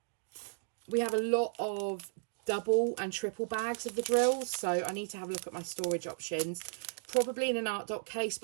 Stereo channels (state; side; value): silent; left; digital silence